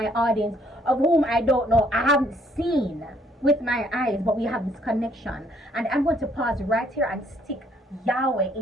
audience, of whom I don't know, I haven't seen with my eyes, but we have this connection. And I'm going to pause right here and stick Yahweh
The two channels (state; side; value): normal; both; correlation 0.65